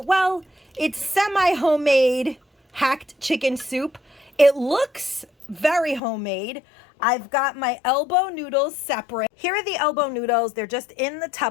Well, it's semi-homemade hacked chicken soup. It looks very homemade. I've got my elbow noodles separate. Here are the elbow noodles. They're just in the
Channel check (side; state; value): right; drops out; at 6.0 s